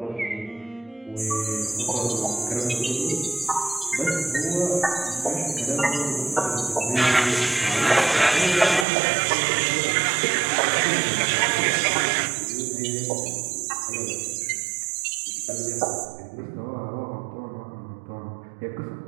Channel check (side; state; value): left; drops out; at 8.8 s